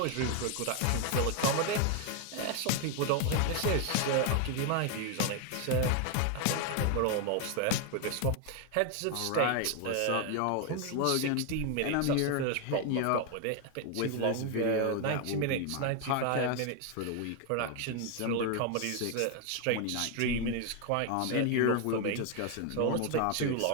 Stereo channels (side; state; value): both; different; correlation 0.01